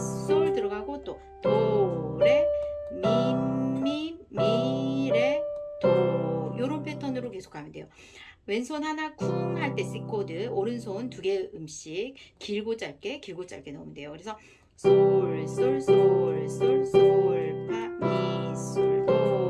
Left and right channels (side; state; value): both; identical; correlation 1.00